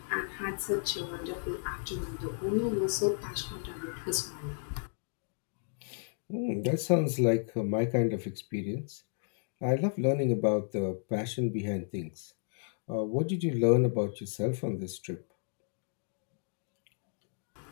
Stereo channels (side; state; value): right; silent; digital silence